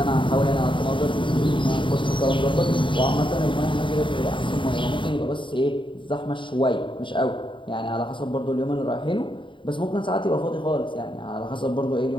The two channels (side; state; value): right; late; 0.24 ms